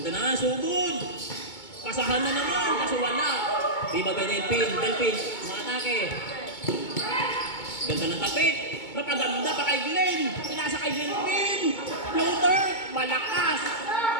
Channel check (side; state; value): right; late; 2.2 ms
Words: na, sugod. Pasahan na naman, kaso wala. Di ba kay Delphin? Delphin, umatake. Ganda ng tapik. Napaganda pa kay Glenn. Pinasa kay Delphin. Floater, malakas.